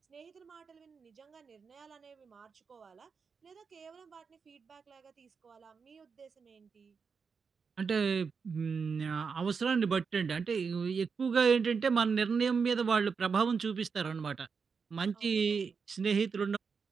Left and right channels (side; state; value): left; quieter; 5.6 dB